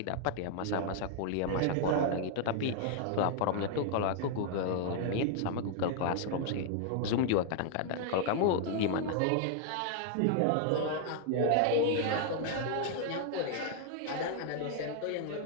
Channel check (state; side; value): different; both; correlation 0.00